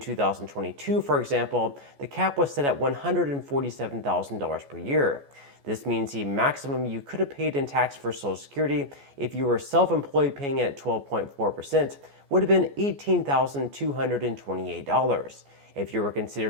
for example, the cap was set at $147,000 per year. This means the maximum you could have paid in tax for Social Security if you were self-employed paying it at 12.4% would have been $18,228. If you were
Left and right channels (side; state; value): left; late; 14 ms